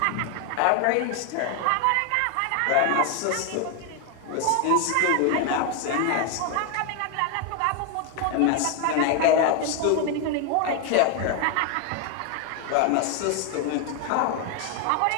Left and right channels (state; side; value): different; both; correlation 0.01